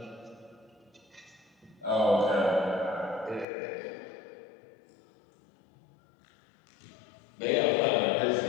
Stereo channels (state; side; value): drops out; right; at 3.5 s